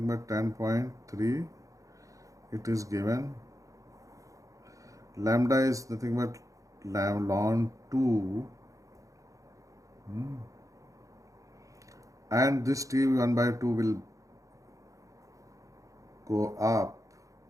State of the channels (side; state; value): left; late; 0.16 ms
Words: but 10.3. It is given. Lambda is nothing but ln 2. And this T 1 by 2 will go up,